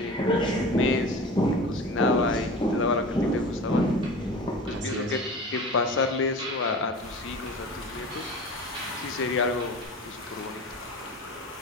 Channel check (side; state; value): both; normal; correlation 0.35